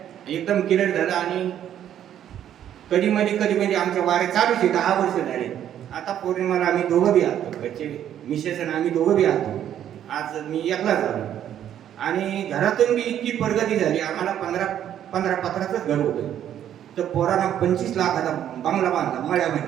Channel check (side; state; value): left; quieter; 10.5 dB